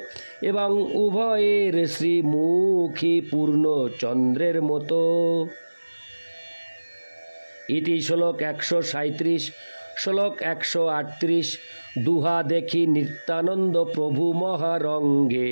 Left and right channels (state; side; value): inverted; both; correlation -1.00